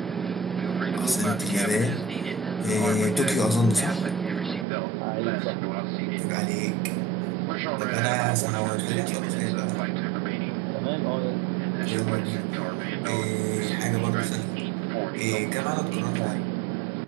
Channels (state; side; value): drops out; left; at 4.7 s